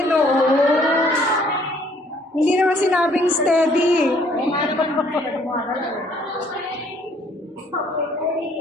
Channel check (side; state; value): both; normal; correlation 0.62